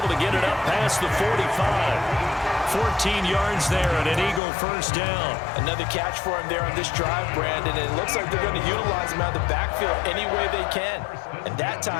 to get it up past the 45. 14 yards there and an Eagle first down. Another catch for him there on this drive, Brandon. And it looks like they're going to utilize him out of the backfield any way they can. And that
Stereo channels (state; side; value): drops out; right; at 4.4 s